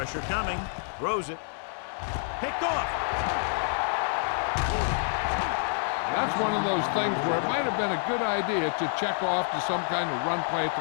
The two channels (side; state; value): right; silent; 59 dB below the other